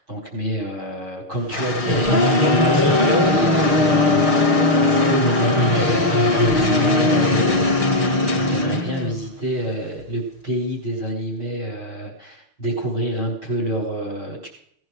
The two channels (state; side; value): late; left; 6.6 ms